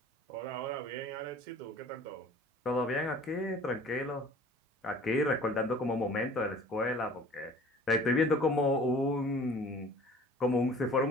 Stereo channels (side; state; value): both; normal; correlation 0.48